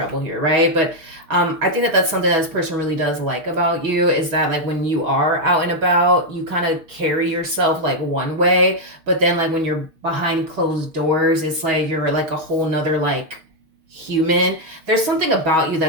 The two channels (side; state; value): left; late; 6.2 ms